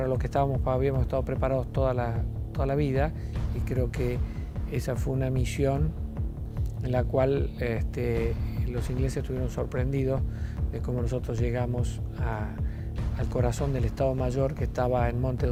lo que habíamos estado preparados toda la vida, y creo que esa fue una misión en la cual los ingleses estuvieron sorprendidos de cómo nosotros llegamos al corazón del Estado Mayor, que estaba en Monte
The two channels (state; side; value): identical; both; correlation 1.00